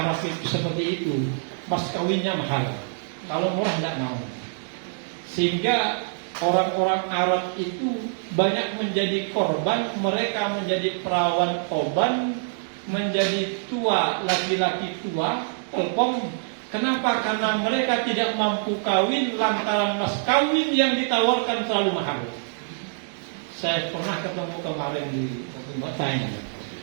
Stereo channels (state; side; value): silent; left; digital silence